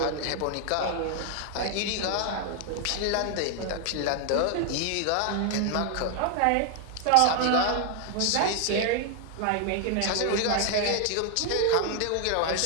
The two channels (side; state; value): both; different; correlation 0.00